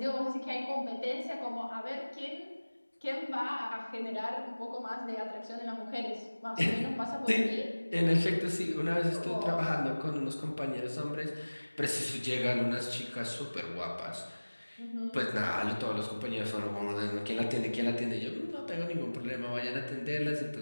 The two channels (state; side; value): inverted; both; correlation -1.00